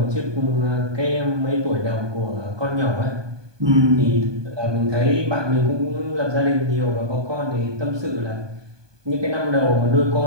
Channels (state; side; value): late; left; 1.2 ms